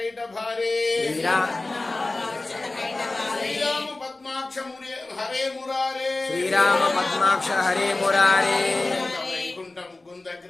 భారే శ్రీరామ పద్మాక్ష హరే మురారే శ్రీరామ పద్మాక్ష హరే మురారే వైకుంఠ ముకుంద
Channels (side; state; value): right; quieter; 3.1 dB